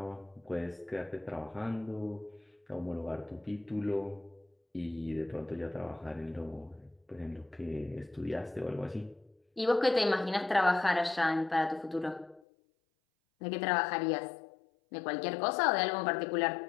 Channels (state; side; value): drops out; right; at 12.4 s